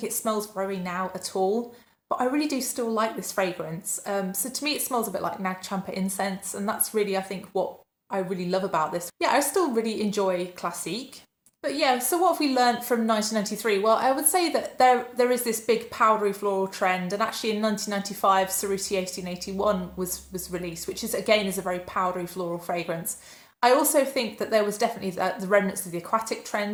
it smells very now at all, but I really do still like this fragrance. So to me it smells a bit like Nag Champa incense, and that's really, I think, what I really love about this. Yeah, I still really enjoy Classique. But yeah, so what have we learnt from 1993? Well, I would say that there is this big powdery floral trend, and actually in 1995, Cerruti 1881 was released, which is again is a very powdery floral fragrance. I also think that there was definitely the remnants of the aquatic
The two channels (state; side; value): identical; both; correlation 1.00